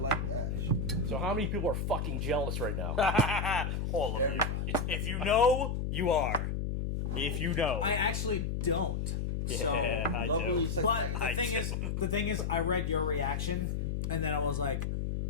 that. So how many people are fucking jealous right now? All of you. If you know, you are. If you know. I actually don't. So, yeah, I Lovely do. but I the thing is, I read your reaction, and then I was like,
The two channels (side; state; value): left; noise; hum, 1 dB below the sound